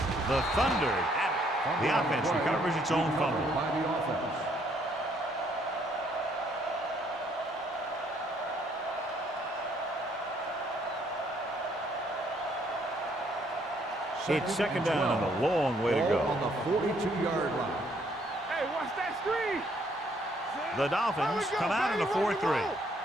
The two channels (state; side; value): normal; both; correlation 0.67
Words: The Thunder have it. The offense recovers its own fumble. By the offense. It's second down and a long way to go. On the 42-yard line. Hey, watch that screen. The Dolphins come out in a 4-3.